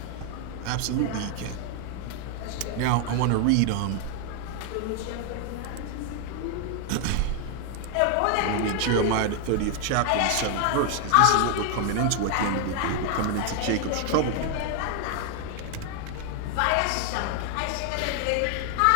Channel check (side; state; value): both; different; correlation 0.00